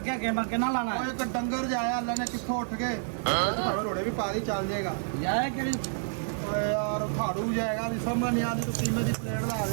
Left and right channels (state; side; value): silent; left; 59 dB below the other